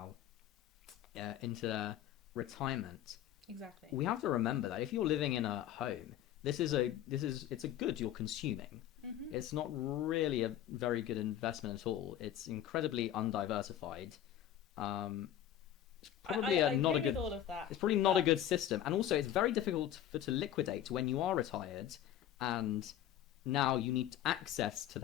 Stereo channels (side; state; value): right; quieter; 11.3 dB